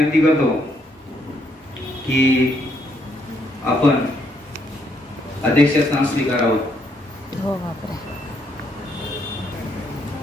करतो की आपण अध्यक्षस्थान स्वीकारावं. हो बापरे.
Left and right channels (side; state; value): both; normal; correlation 0.73